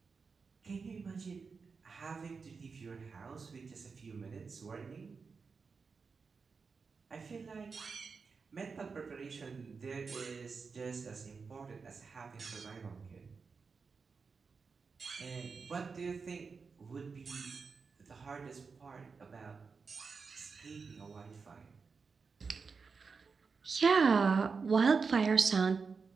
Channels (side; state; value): left; quieter; 5.0 dB